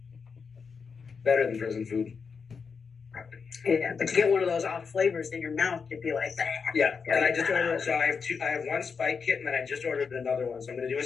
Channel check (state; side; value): quieter; right; 5.6 dB